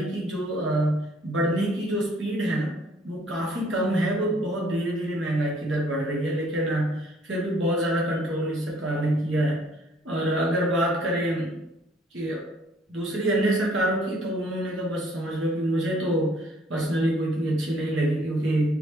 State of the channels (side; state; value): both; normal; correlation 0.61